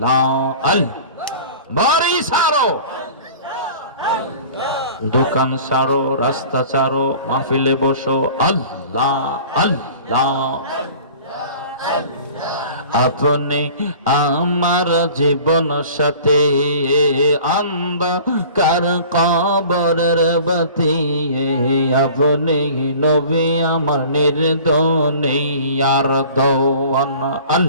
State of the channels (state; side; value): inverted; both; correlation -0.45